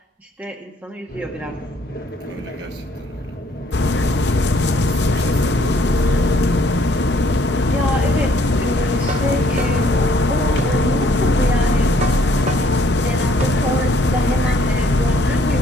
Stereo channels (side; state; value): both; normal; correlation 0.64